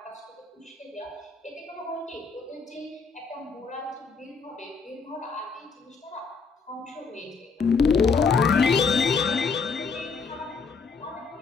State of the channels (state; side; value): quieter; right; 5.0 dB